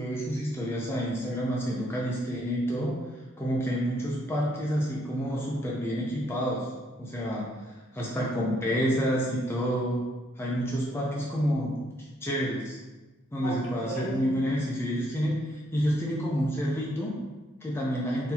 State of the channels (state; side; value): normal; both; correlation 0.72